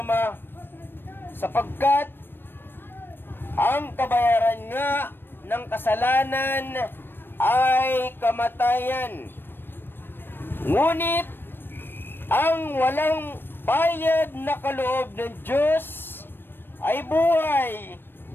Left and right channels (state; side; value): late; right; 0.098 ms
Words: sapagkat ang kabayaran nga ng kasalanan ay kamatayan. Ngunit ang walang bayad na kaloob ng Diyos ay buhay